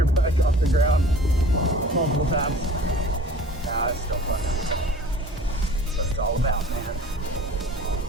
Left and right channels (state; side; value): normal; both; correlation 0.45